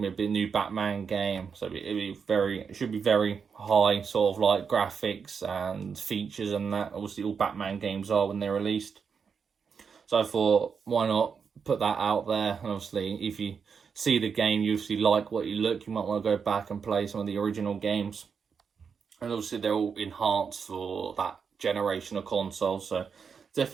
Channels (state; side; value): quieter; left; 6.2 dB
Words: to be a new Batman game, so it should be very high sort of like graphics and features and that. Obviously all Batman games are when they're released. So I thought, why not put that out there? And obviously if you see the game, you obviously like what you look, you might want to go back and play some of the original games. And obviously they're all enhanced for that generation of consoles, so